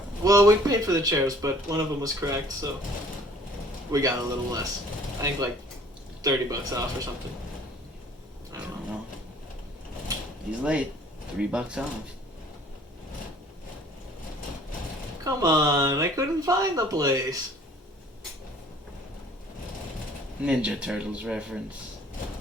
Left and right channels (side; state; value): both; normal; correlation 0.54